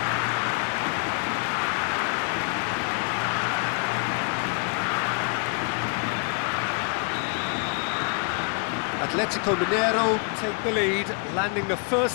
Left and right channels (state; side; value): quieter; right; 37.3 dB